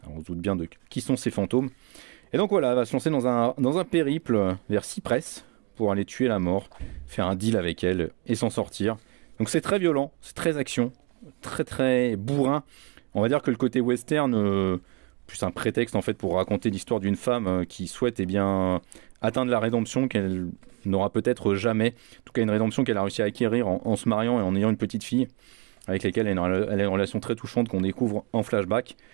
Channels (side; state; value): left; quieter; 25.0 dB